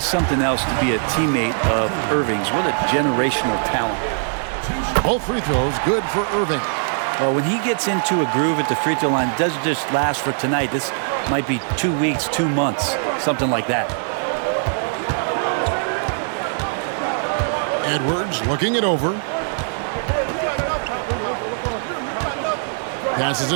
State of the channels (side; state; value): left; silent; digital silence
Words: something else to be a teammate of Irving's. What a generational talent. Both free throws good for Irving. Well, when he gets into a groove at the free throw line, it doesn't just last for tonight. This might be 2 weeks, 2 months, something like that. Edwards looking it over. Passes